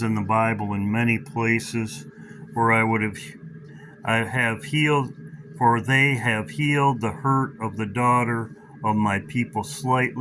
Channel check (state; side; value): identical; both; correlation 1.00